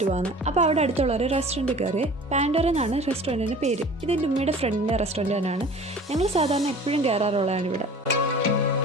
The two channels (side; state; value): both; normal; correlation 0.44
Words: പോകാമെന്ന്. അപ്പോൾ അവിടെ അടുത്തുള്ള ഒരു റെസ്റ്റോറൻറ്റ് കയറി. പാൻഡോറ എന്നാണ് റെസ്റ്റോറൻറ്റിൻ്റെ പേര്. ഇതെൻ്റെ ഉമ്മയുടെ ഫ്രണ്ടിൻ്റെ റെസ്റ്റോറൻറ്റ് തന്നെയാണ്. ഞങ്ങൾ സാധാരണ എപ്പോഴും കയറാറുള്ളതാണ് ഇവിടെ.